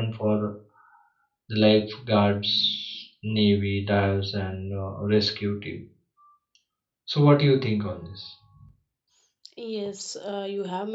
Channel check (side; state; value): both; identical; correlation 1.00